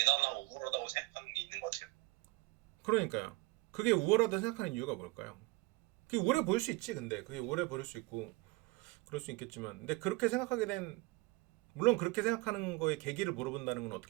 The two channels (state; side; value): quieter; left; 22.8 dB